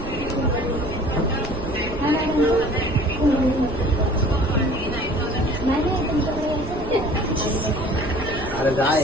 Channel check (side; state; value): right; noise; rumble, 9 dB below the sound